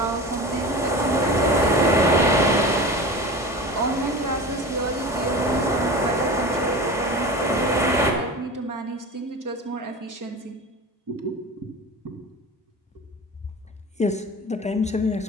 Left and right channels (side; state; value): both; normal; correlation 0.32